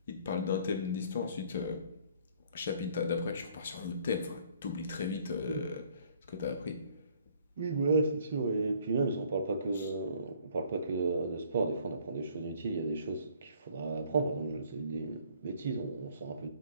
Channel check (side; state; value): both; inverted; correlation -0.59